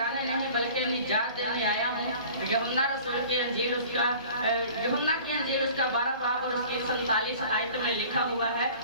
नहीं बल्कि निजात देने आया हूँ। यूहन्ना रसूल की अंजील उसका यूहन्ना की अंजील उसका 12 बाब और उसकी 47 आयत में लिखा हुआ है,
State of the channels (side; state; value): both; inverted; correlation -0.46